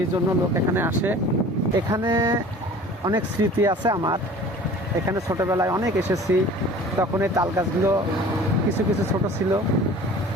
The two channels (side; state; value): both; normal; correlation 0.45